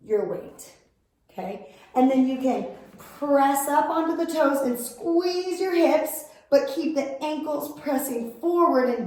your weight, okay? And then you can press up onto the toes and squeeze your hips, but keep the ankles pressing forward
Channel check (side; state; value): both; identical; correlation 1.00